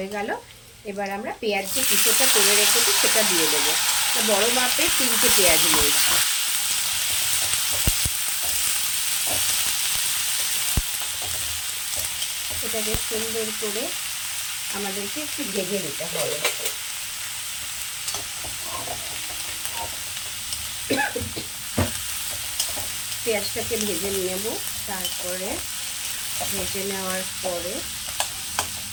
গেল, এবার আমরা পেঁয়াজ যে কুচোটা করে রেখেছি সেটা দিয়ে দেবো। বড় মাপে 3টে পেঁয়াজ নিয়েছি। এটাকে সুন্দর করে আমাদেরকে একটু ভেজে নিতে হবে। পেঁয়াজটাকে ভেজে নেব। তারপরে ভেজে নেওয়ার পরে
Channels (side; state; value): both; identical; correlation 1.00